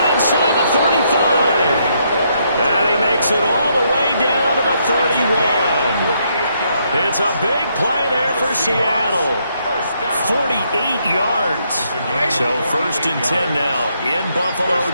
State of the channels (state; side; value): inverted; both; correlation -0.74